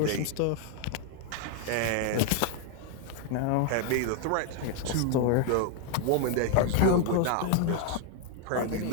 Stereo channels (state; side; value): different; both; correlation 0.01